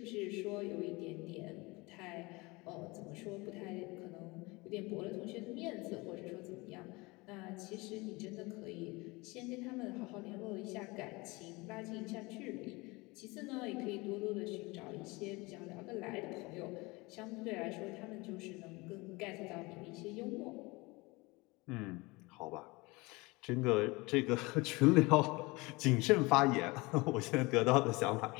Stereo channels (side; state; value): right; quieter; 24.2 dB